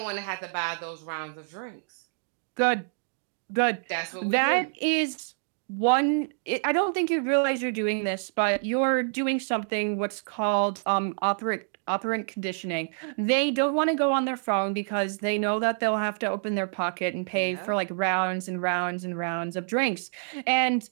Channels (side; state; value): left; silent; digital silence